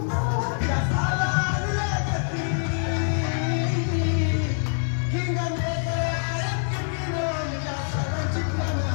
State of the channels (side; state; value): right; silent; 61 dB below the other